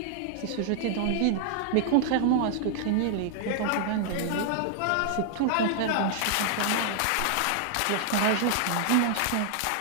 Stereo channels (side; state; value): both; different; correlation 0.00